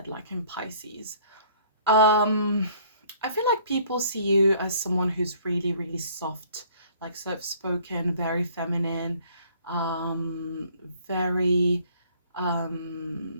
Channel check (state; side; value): inverted; both; correlation -0.56